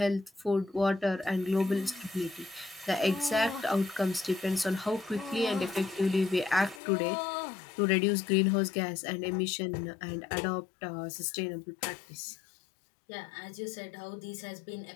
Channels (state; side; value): drops out; right; at 6.8 s